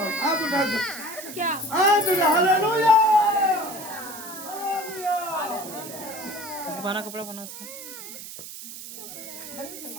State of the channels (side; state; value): right; noise; hiss, 12 dB below the sound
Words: हाथ उठा दो, हाथ उठा। हालेलुया, बना कपड़ा बना उसका।